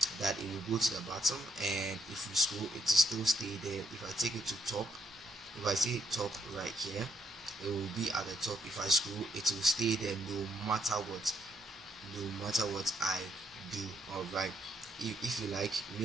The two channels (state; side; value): normal; both; correlation 0.73